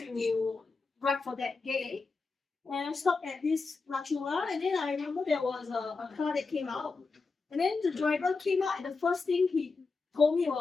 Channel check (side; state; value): right; quieter; 4.2 dB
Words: ride for that day. And I stopped at this Lachula, and then I remember there was a car that came out. And then the driver came out, and the first thing he told me